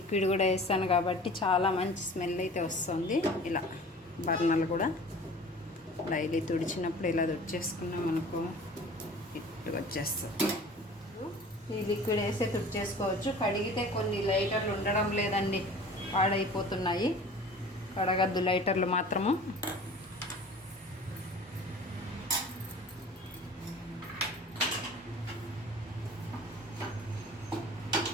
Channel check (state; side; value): normal; both; correlation 0.43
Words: కూడా వేస్తాను కాబట్టి చాలా మంచి స్మెల్ అయితే వస్తుంది. ఇలా బర్నర్లు కూడా డైలీ తుడిచినప్పుడు ఇలా తుడిచేసుకున్నాం అనుకో నీట్గా వచ్చేస్తుంది. ఈ లిక్విడ్ వేస్తే తుడిచేసుకోవచ్చు. కడిగితే కొన్ని లైటర్లు ఉండడం లేదండి, పాడైపోతున్నాయి. కడగద్దు లైటర్లు మాత్రము.